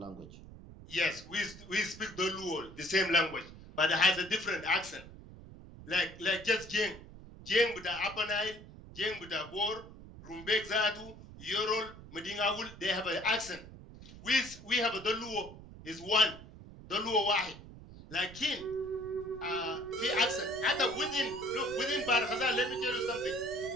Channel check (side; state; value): right; noise; rumble, 16 dB below the sound